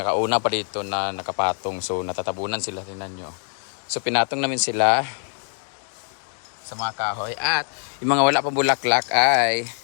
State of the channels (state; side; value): silent; right; 55 dB below the other